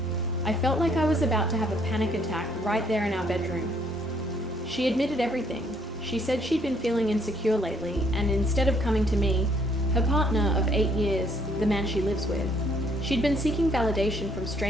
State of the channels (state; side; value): normal; both; correlation 0.66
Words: I felt like I was about to have a panic attack right there in our bedroom. She admitted everything. She said she'd been feeling insecure lately, and instead of coming to me, her partner of 8 years, the man she lives with, she'd been seeking validation from